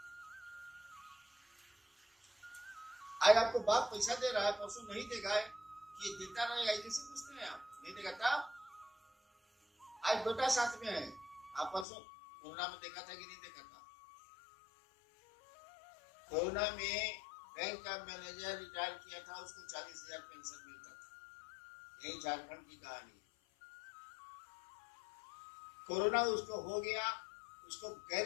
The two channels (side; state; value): right; drops out; at 11.9 s